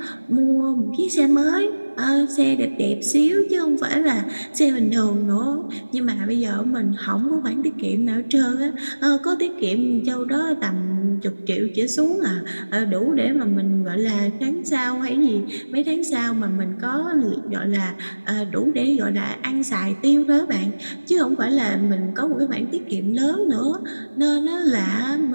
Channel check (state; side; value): inverted; both; correlation -1.00